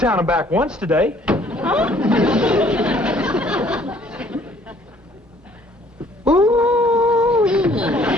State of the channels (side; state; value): both; normal; correlation 0.59